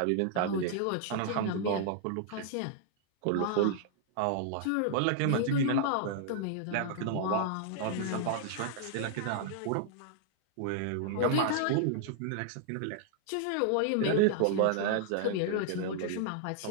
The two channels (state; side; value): different; both; correlation -0.01